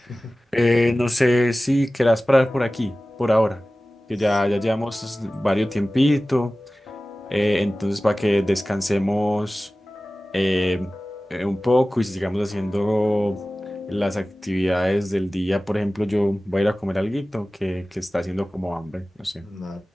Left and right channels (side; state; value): both; normal; correlation 0.97